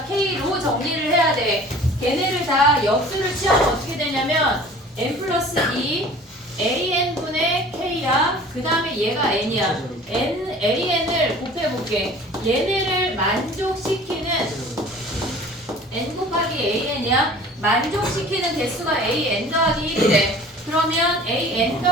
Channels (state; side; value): normal; both; correlation 0.46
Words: K로 정리를 해야 돼. 걔네를 다 역수를 취하면 어떻게 되냐면 n 플러스 2 AN분의 K야. 그 다음에 얘가 N이야. AN을 곱해볼게. 얘네를 만족시키는 N 곱하기 AN이야. 만족시키는 개수가 AN 더하기 1이래. 그러면 AN